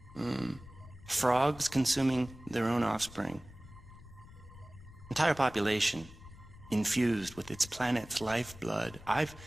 Frogs consuming their own offspring. Entire population infused with its planet's lifeblood. I've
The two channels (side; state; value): left; noise; rumble, 18 dB below the sound